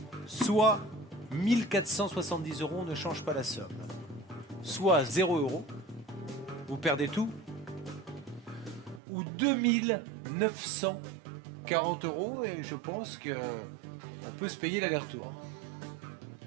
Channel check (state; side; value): drops out; left; at 9.0 s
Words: soit 1470 €, on ne change pas la somme, soit 0 €, vous perdez tout, ou 2940 €, et je pense que on peut se payer l'aller-retour.